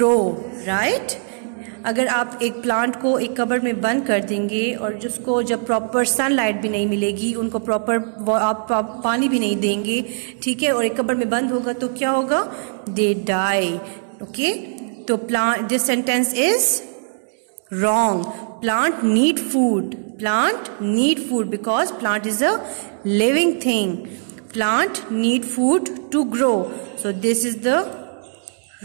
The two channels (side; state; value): left; silent; digital silence